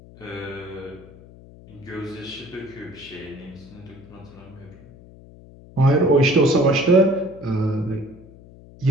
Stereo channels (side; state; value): left; noise; hum, 21 dB below the sound